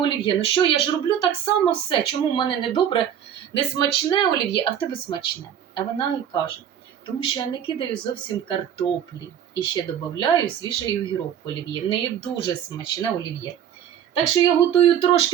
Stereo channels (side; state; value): left; quieter; 9.4 dB